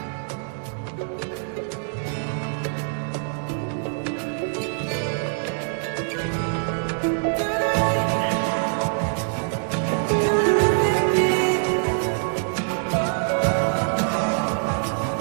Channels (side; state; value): left; silent; digital silence